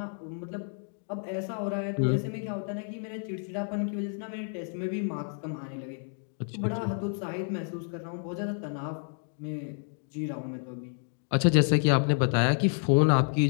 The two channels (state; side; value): silent; right; 58 dB below the other